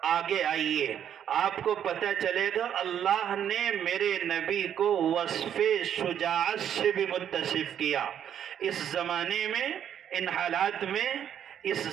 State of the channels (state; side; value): quieter; left; 9.4 dB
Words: آگے آئیے، آپ کو پتہ چلے گا اللہ نے میرے نبی کو وصف شجاعت سے بھی متصف کیا۔ اس زمانے میں، ان حالات میں اس